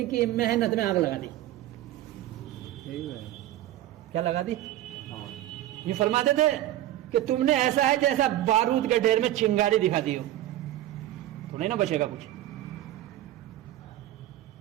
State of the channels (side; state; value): left; quieter; 14.0 dB